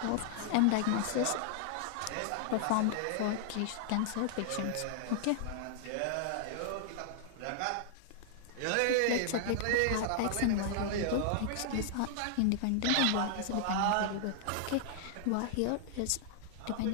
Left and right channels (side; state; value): both; different; correlation -0.01